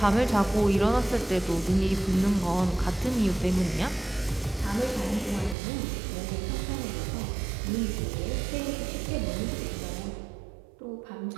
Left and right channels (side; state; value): left; drops out; at 5.6 s